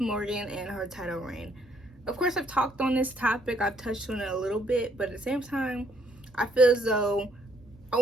and her title reign. Of course, I've talked on this topic, I've touched on it a little bit, but at the same time, I feel as though I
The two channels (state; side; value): normal; both; correlation 0.68